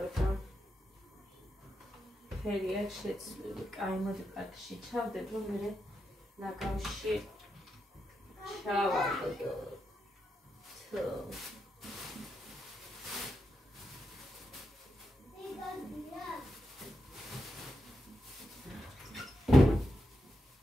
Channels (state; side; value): normal; both; correlation 0.86